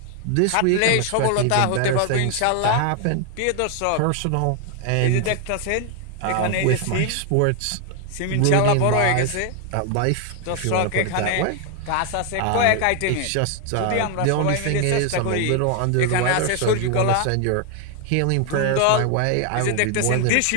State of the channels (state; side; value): different; both; correlation 0.00